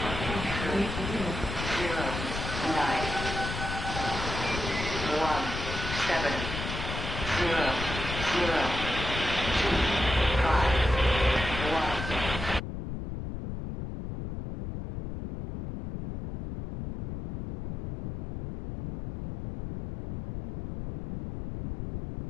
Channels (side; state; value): left; noise; rumble, 6 dB below the sound